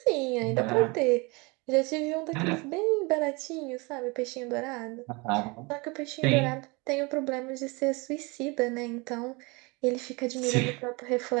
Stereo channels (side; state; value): left; quieter; 27.2 dB